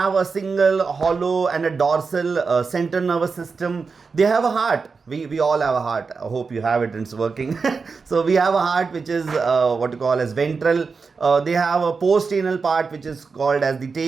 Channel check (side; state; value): left; quieter; 4.8 dB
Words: a single hollow and a dorsal central nervous system. They have a heart. We all have a heart. I hope you have it and it's working. So we have a heart which is what you call as ventral. They have a post-anal part which is called as the